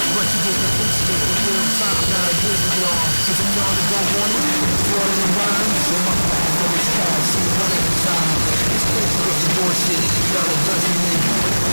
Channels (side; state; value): both; inverted; correlation -1.00